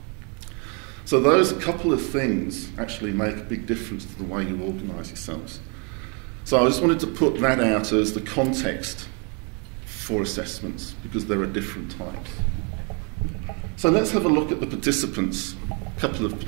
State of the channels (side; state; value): left; quieter; 34.8 dB